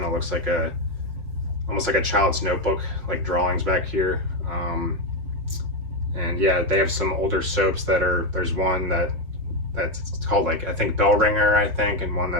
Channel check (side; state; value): left; late; 5.3 ms